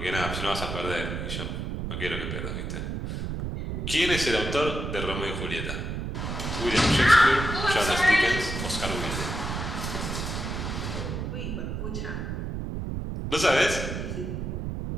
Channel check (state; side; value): noise; right; rumble, 4 dB below the sound